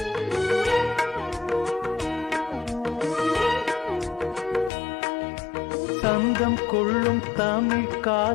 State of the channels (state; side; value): drops out; right; at 4.7 s